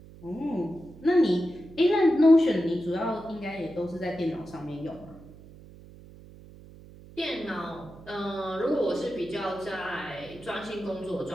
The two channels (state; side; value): noise; right; hum, 19 dB below the sound